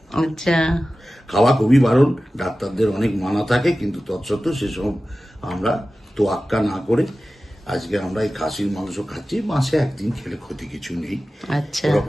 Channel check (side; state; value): both; normal; correlation 0.95